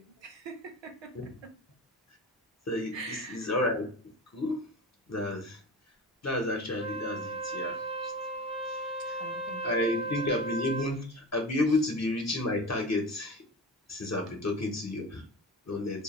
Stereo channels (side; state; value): both; normal; correlation 0.31